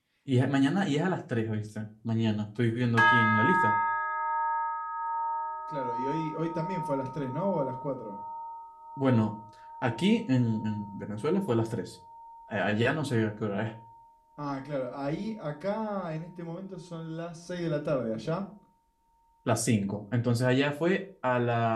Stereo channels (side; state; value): both; identical; correlation 1.00